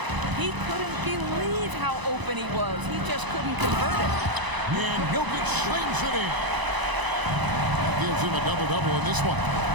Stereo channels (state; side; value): late; left; 1.0 ms